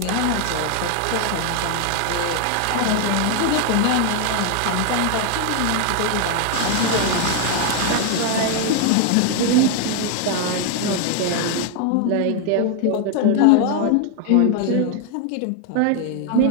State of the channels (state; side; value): different; both; correlation 0.01